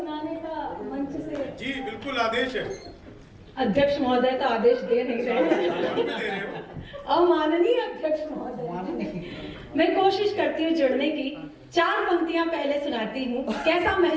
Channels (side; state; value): both; identical; correlation 1.00